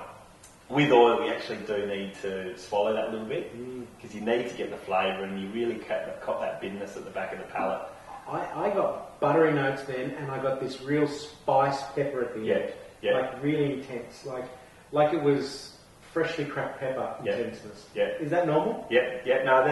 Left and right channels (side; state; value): both; identical; correlation 1.00